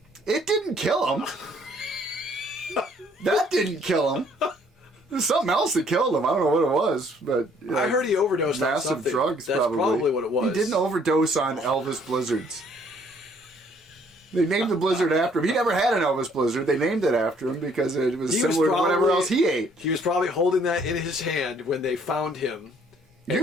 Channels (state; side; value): normal; both; correlation 0.62